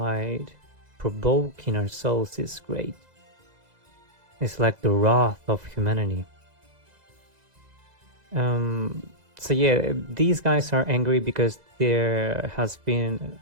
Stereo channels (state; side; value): late; left; 2.0 ms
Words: provoke in our souls is great. It's like the wrath of humanity. So yeah, these guys are angry because there has been